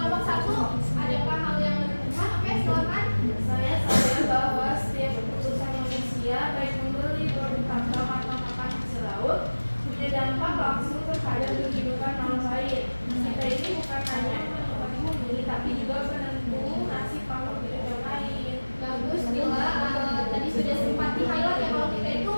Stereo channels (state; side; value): inverted; both; correlation -1.00